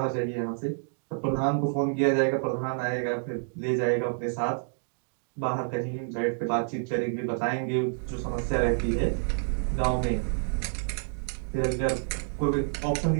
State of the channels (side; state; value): left; silent; digital silence